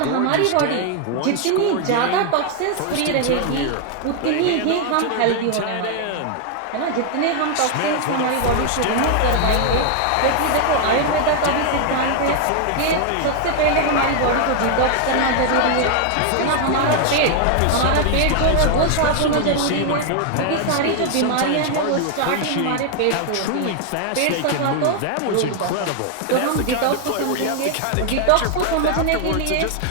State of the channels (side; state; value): both; different; correlation 0.00